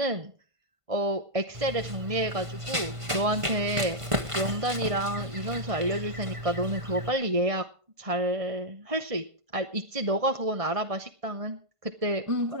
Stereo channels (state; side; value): late; left; 1.5 ms